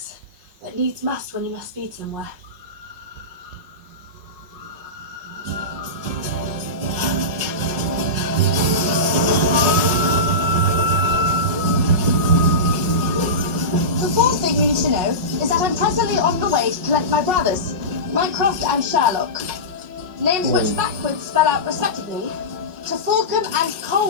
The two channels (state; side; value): late; left; 5.5 ms